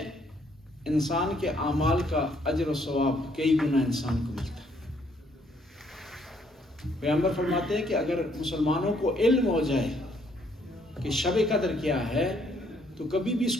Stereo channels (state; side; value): normal; both; correlation 0.68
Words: انسان کے اعمال کا اجر و ثواب کئی گنا انسان کو ملتا ہے۔ پیغمبر فرماتے ہیں کہ اگر مسلمانوں کو علم ہو جائے کہ شب قدر کیا ہے تو کبھی بھی اس